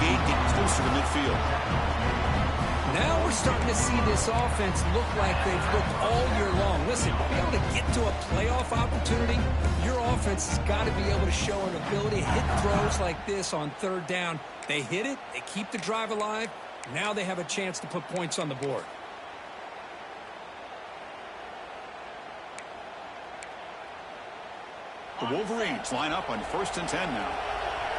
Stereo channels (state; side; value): identical; both; correlation 1.00